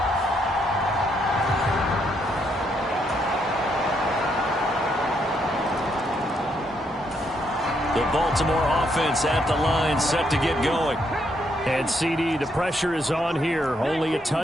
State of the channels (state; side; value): normal; both; correlation 0.75